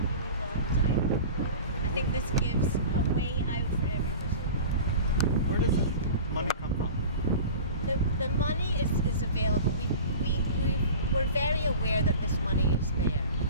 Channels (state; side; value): inverted; both; correlation -0.36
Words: really long time. I think this gives a way out for everybody. Where does the money come from? The money is available. We're very aware that this money is there.